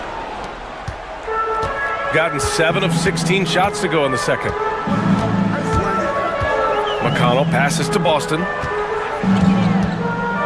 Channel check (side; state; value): both; identical; correlation 1.00